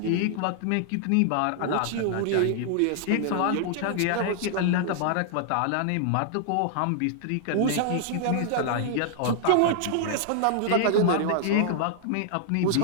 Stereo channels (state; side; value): different; both; correlation -0.01